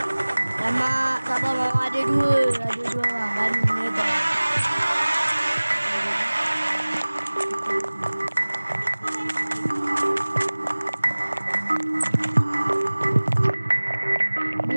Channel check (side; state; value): both; inverted; correlation -1.00